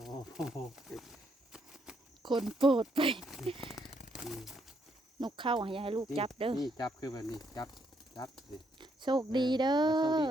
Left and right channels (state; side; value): normal; both; correlation 0.74